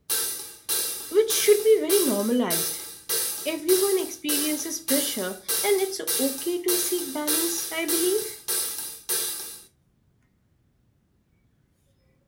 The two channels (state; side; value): identical; both; correlation 1.00